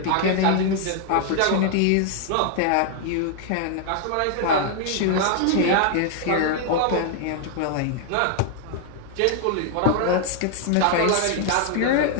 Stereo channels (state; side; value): different; both; correlation 0.00